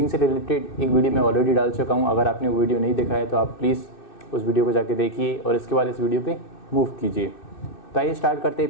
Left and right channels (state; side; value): late; right; 2.6 ms